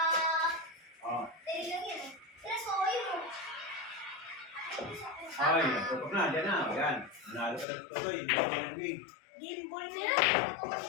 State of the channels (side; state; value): right; drops out; at 7.7 s